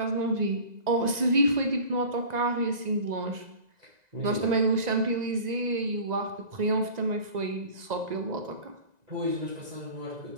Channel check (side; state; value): left; late; 2.0 ms